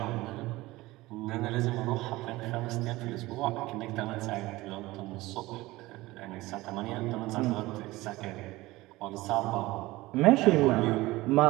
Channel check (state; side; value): quieter; left; 19.3 dB